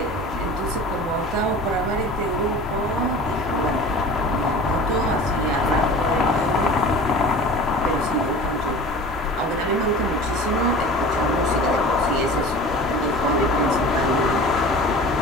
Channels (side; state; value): both; normal; correlation 0.39